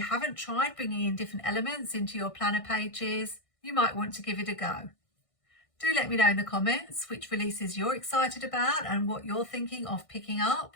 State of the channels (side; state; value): right; late; 1.6 ms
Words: haven't tried bringing in different elements into your planner pages, you might want to give it a go. Do let me know in the comments which releases you're excited about and what you're thinking of picking up.